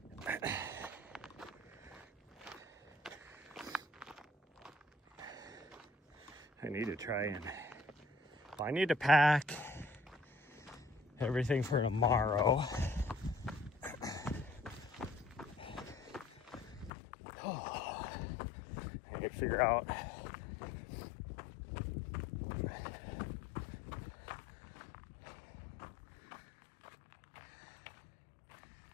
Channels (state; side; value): drops out; right; at 16.9 s